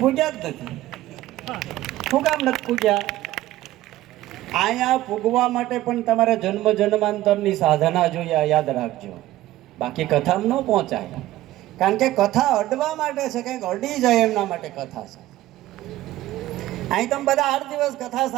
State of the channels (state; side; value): quieter; left; 15.4 dB